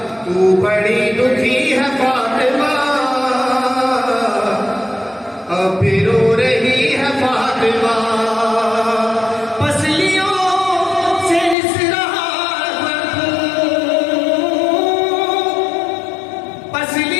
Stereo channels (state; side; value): drops out; right; at 11.6 s